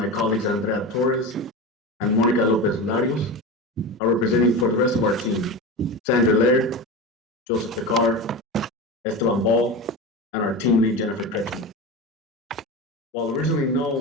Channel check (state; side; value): normal; both; correlation 0.25